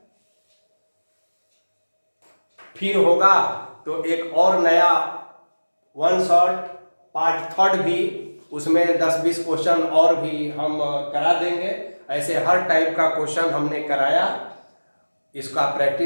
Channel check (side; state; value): both; inverted; correlation -1.00